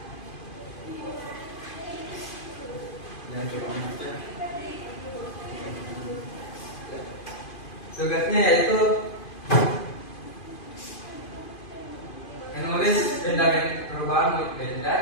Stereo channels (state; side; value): late; right; 2.5 ms